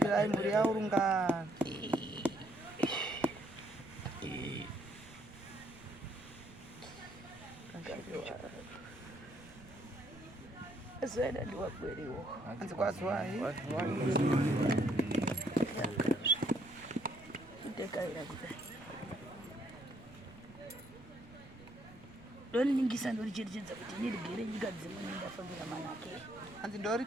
mhuri yaurungana Zena ndiwakweriwo anzi kwazwai ndekaira kudai ndoningisa ndoricherechedza kuti ndirigere nyika dzimwe ndafambira manake. Hanzi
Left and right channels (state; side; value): noise; right; rumble, 22 dB below the sound